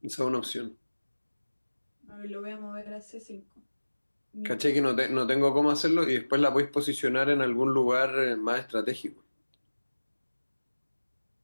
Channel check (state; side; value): inverted; both; correlation -1.00